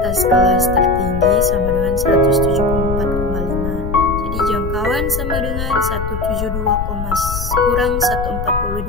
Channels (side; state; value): left; noise; rumble, 5 dB below the sound